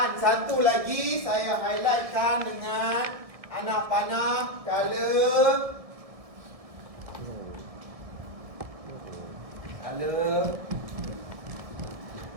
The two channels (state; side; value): late; left; 1.6 ms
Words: satu lagi saya highlightkan dengan anak panah color